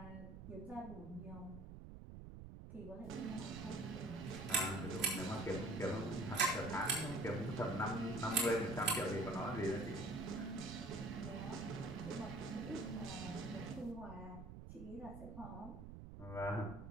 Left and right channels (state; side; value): noise; right; rumble, 11 dB below the sound